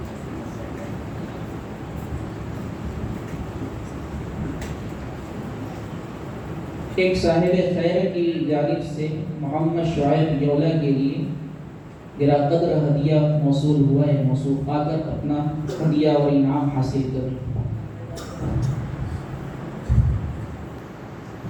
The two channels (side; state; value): both; identical; correlation 1.00